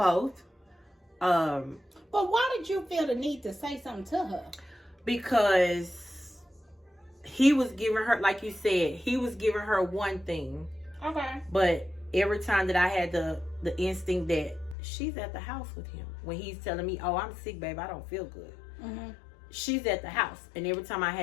But why did you feel the need to say something to her? Because he was giving her, like you said, he was giving her one thing. Okay. But every time that I had the instinct that she's at the house with him, when he's telling me, oh, I'm sick, babe, I don't feel good. Mm-hmm. She's at the house. And every time I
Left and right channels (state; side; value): drops out; right; at 14.8 s